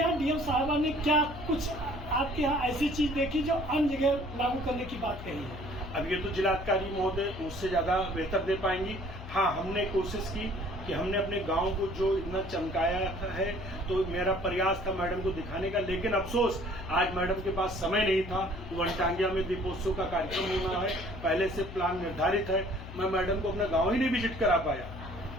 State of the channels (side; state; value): left; noise; hum, 12 dB below the sound